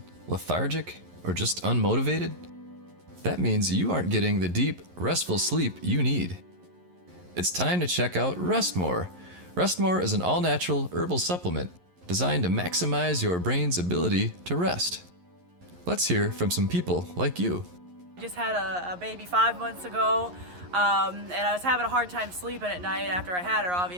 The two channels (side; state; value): left; late; 11 ms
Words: lethargic, or just unmotivated? That means you aren't getting the deep, restful sleep you need. It's time to check out Rest More. Rest More is an all-natural herbal supplement designed to maximize your brain's ability to rest. Let's hear from some people like you. I just had a baby 5 months ago, and I was having a hard time sleeping at night after I had her,